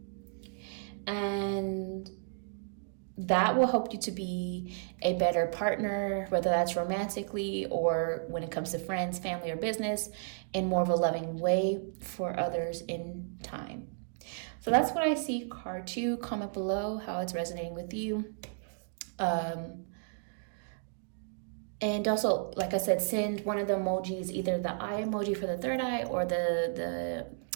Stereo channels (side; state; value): left; silent; digital silence